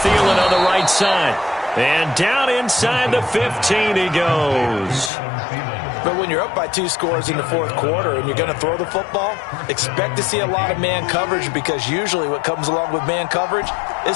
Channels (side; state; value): right; drops out; at 5.1 s